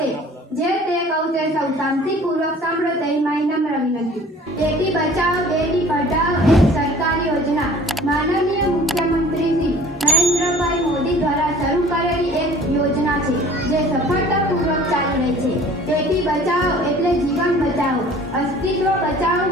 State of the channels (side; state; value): both; normal; correlation 0.48